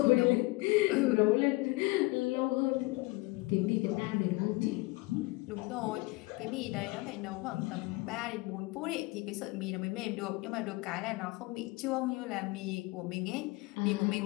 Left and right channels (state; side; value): quieter; right; 23.7 dB